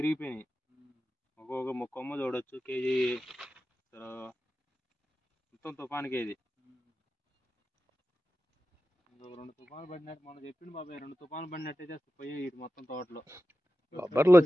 ఇరిగిపోయినాయి. ఒక్కొక్క కొమ్మ చూడొచ్చు కేజీ మొత్తం తుఫానికి. ఇది 2 తుఫాను పడినట్టు మొన్న చెప్పింది బాబాయ్. 2 తుఫాను పడినట్టయితే పోయి ఇటు మొత్తం తోటలో బొబ్బర్లు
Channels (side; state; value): both; normal; correlation 0.93